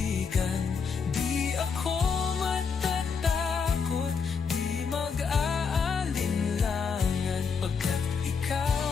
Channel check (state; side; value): quieter; right; 5.7 dB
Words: Di ako matatakot, di mag-aalinlangan, pagkat ikaw